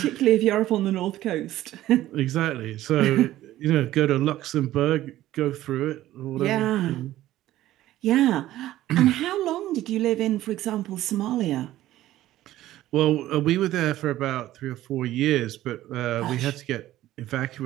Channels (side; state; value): left; quieter; 14.5 dB